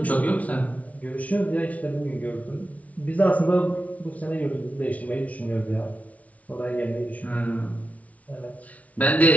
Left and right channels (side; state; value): right; late; 0.068 ms